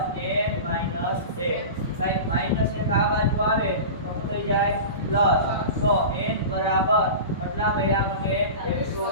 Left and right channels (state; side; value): inverted; both; correlation -0.30